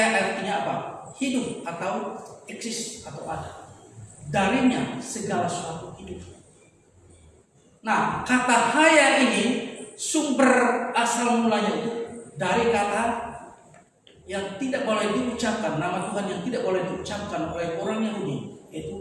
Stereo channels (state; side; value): identical; both; correlation 1.00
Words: artinya apa? Hidup atau eksis atau ada. Darinya segala sesuatu hidup. Nah, kata haya ini sumber asal mulanya itu dari kata yang tidak boleh diucapkan, nama Tuhan yang tidak boleh diucapkan oleh orang Yahudi,